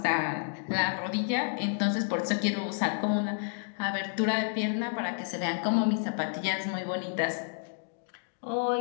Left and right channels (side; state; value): right; silent; digital silence